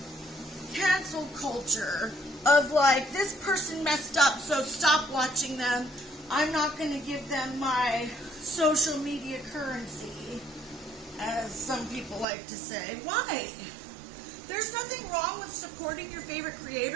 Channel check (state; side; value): drops out; left; at 12.2 s